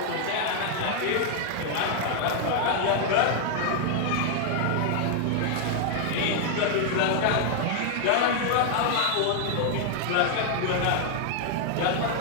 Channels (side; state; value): both; different; correlation 0.00